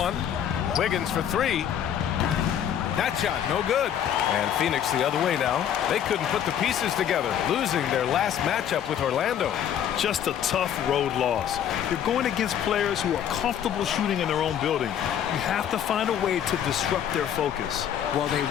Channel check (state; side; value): quieter; right; 9.6 dB